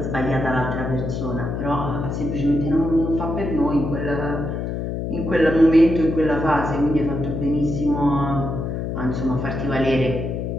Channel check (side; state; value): left; noise; hum, 3 dB below the sound